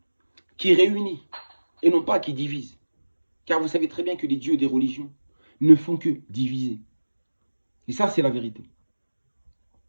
qui réunit et non pas qui divise. Car vous savez très bien que les dieux des religions ne font que diviser. Et ça, c'est la vérité.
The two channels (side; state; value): both; inverted; correlation -1.00